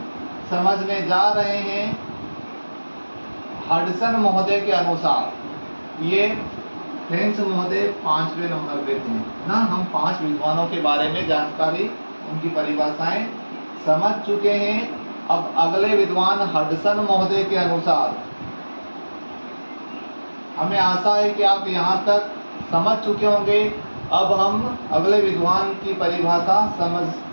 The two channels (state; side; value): inverted; both; correlation -1.00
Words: समझने जा रहे हैं हडसन महोदय के अनुसार। ये फ्रेंच महोदय 5वें नंबर पे थे ना। हम 5 विद्वानों के बारे में जानकारी, उनकी परिभाषाएं समझ चुके हैं। अब अगले विद्वान हडसन महोदय के अनुसार, हमें आशा है कि आप यहाँ तक समझ चुके होंगे। अब हम अगले विद्वान की परिभाषा